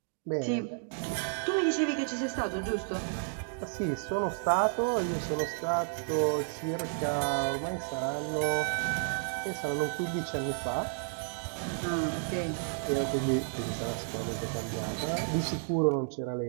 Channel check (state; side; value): silent; left; digital silence